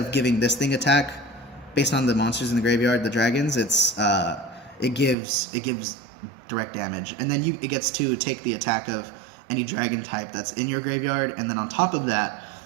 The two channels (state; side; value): drops out; left; at 5.2 s